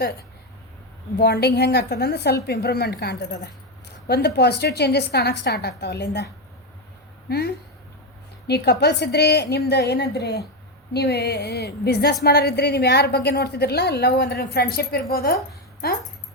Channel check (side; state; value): both; normal; correlation 0.09